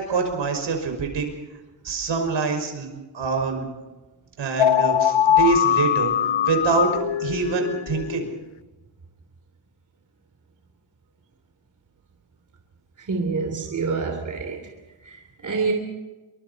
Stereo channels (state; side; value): normal; both; correlation -0.06